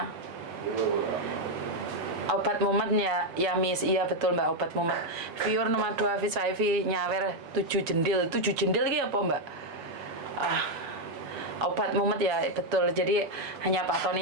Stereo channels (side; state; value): left; late; 7.0 ms